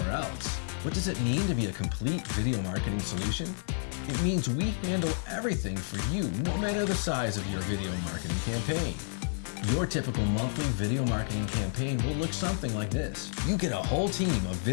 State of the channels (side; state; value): right; silent; digital silence